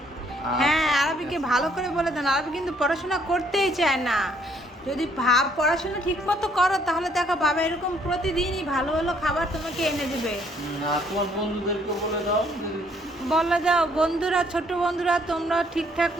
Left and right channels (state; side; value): normal; both; correlation 0.65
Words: হ্যাঁ, আরবিকে ভালো করে বলে দেন, আরবি কিন্তু পড়াশোনা করতেই চায় না। যদি পড়াশোনা ঠিক মতো করো তাহলে দেখো বাবা এরকম প্রতিদিনই ভালো ভালো খাবার তোমাকে এনে দেবে। আর তোমার বন্ধুদেরকে বলে দাও বলে দাও বন্ধুরা, ছোট বন্ধুরা তোমরা ঠিকঠাক